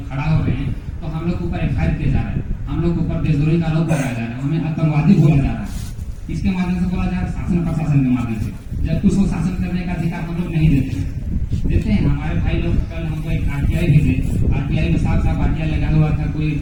खड़ा हो रहे हैं तो हम लोग के ऊपर FIR किया जा रहा है हम लोग के ऊपर देशद्रोही का आरोप लगाया जा रहा है हमें आतंकवादी बोला जा रहा है। इसके माध्यम से बोला जा रहा है शासन प्रशासन के माध्यम से जबकि उसको शासन करने का अधिकार हम लोग नहीं देते हैं। हमारे भाई लोग कल हमको एक RTI भेजे RTI में साफ RTI लगा हुआ था कोई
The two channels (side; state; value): both; identical; correlation 1.00